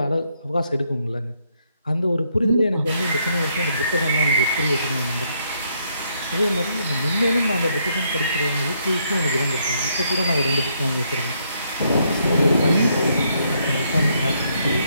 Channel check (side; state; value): both; inverted; correlation -0.73